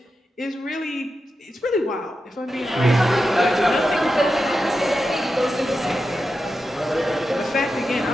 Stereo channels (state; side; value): normal; both; correlation 0.90